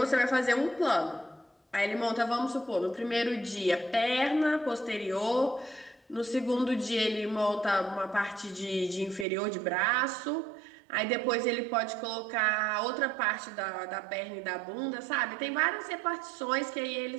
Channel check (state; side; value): drops out; left; at 9.2 s